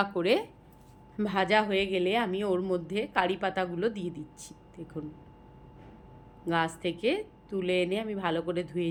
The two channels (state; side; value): identical; both; correlation 1.00